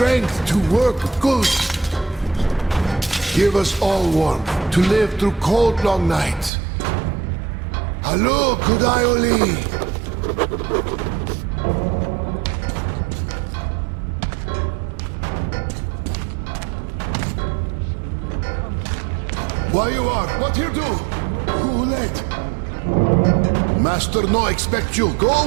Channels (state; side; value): drops out; left; at 6.5 s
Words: to work good. Give us all warmth to live through cold, long nights. Hello, Kudaioli! Why you are? What you do? Who let? Master no expect you. Go